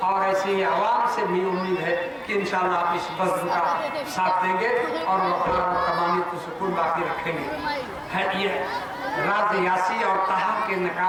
और ऐसे ही आवाम से भी उम्मीद है कि इंशाअल्लाह आप इस बज़्म का साथ देंगे और वक़ार और तमामी को सुकून बाकी रखेंगे। है ये राज यासी और तहा के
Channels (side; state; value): both; identical; correlation 1.00